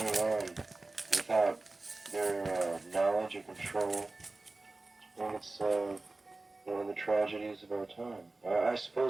on without their knowledge or control. And it's one of the tragedies of our time. I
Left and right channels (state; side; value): quieter; left; 3.2 dB